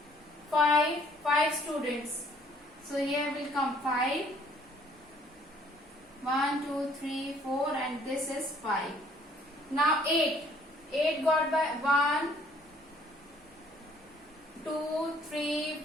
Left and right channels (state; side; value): normal; both; correlation 0.61